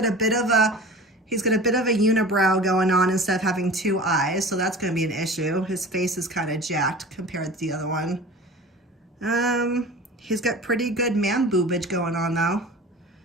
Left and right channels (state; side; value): normal; both; correlation 0.38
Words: a bit of a unibrow going on instead of having two eyes, so that's going to be an issue. His face is kind of jacked compared to the other one. He's got pretty good man boobage going on though.